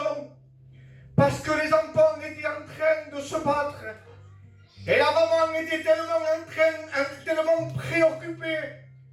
Parce que les enfants étaient en train de se battre. Et la maman était tellement préoccupée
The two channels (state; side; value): identical; both; correlation 1.00